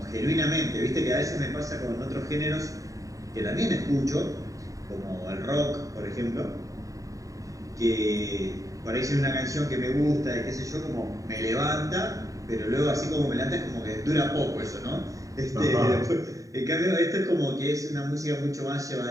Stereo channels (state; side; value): late; left; 0.16 ms